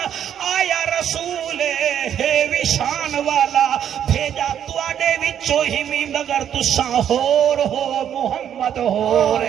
آیا رسول ہے وشان والا بھیجا تواڈے وچوں ہی می مگر تساں ہور ہو محمد ہو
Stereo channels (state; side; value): quieter; left; 9.5 dB